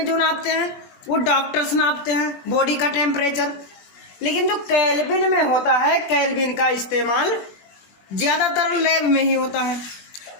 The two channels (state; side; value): late; right; 21 ms